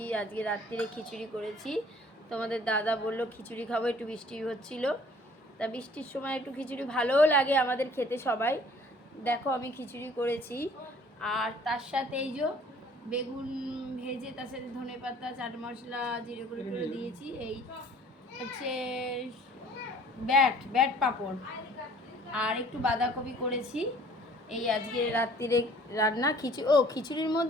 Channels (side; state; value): both; normal; correlation 0.54